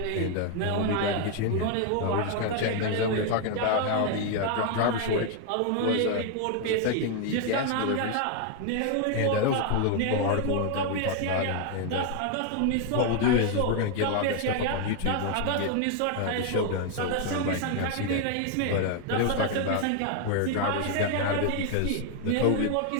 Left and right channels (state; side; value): different; both; correlation 0.00